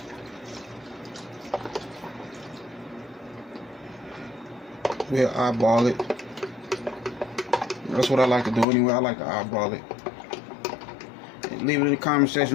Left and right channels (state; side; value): drops out; right; at 8.7 s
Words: We'll eyeball it That's what I like to do anyway. I like to eyeball it. And leave it in the comment